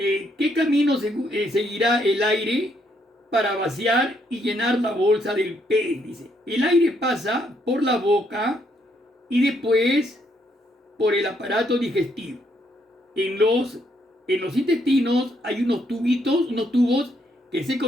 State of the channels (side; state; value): both; normal; correlation 0.73